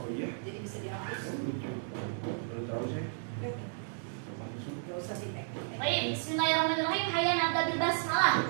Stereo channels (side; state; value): left; silent; digital silence